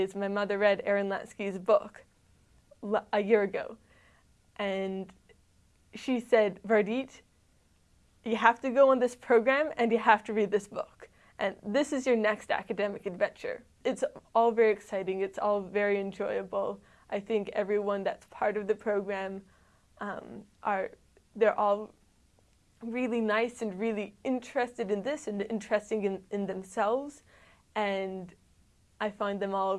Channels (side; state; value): both; identical; correlation 1.00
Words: my mother read Aaron Latsky's book a year ago. And she said, Vardit, you have to go on this program and you have to read this book. And this is your next academic adventure. It's all very exciting. It's all very enjoyable. I think everyone that's part of the program, they're all really nice and really interested in this and interesting in themselves. And I find them all